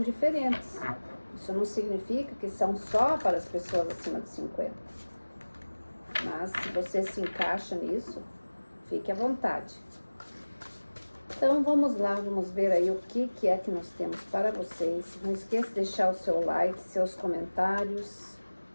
diferentes. Isso não significa que são só para as pessoas acima de 50. Mas se você se encaixa nisso, fique à vontade. Então vamos lá, vamos ver aí o que é que nós temos para vocês. Não esqueça de deixar o seu like, seus comentários,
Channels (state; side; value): inverted; both; correlation -1.00